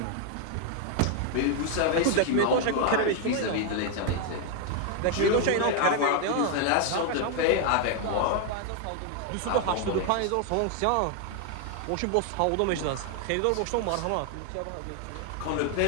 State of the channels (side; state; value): both; different; correlation 0.00